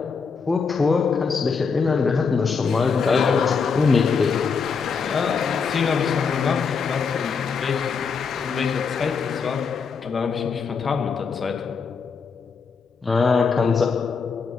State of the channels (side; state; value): right; quieter; 5.5 dB